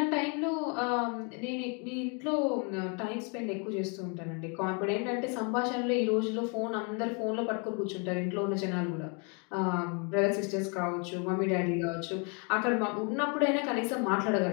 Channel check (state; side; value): quieter; right; 35.3 dB